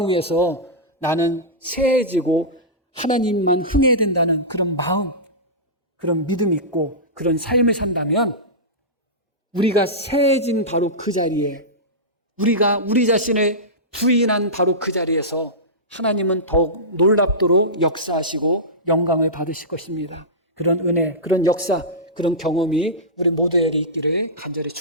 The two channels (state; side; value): normal; both; correlation -0.16